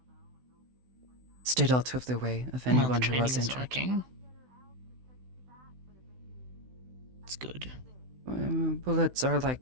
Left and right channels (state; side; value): late; left; 16 ms